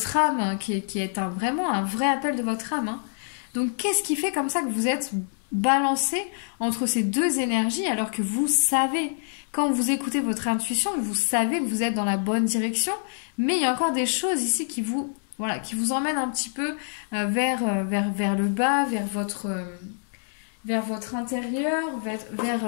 âme, hein, qui est vraiment un vrai appel de votre âme, hein. Donc qu'est-ce qui fait comme ça que vous êtes balancé entre ces deux énergies alors que vous savez, quand vous écoutez votre intuition, vous savez que vous êtes dans la bonne direction, mais il y a encore des choses ici voilà, qui vous emmène un petit peu vers le bas, vers votre intérieur,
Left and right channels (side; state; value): right; silent; 61 dB below the other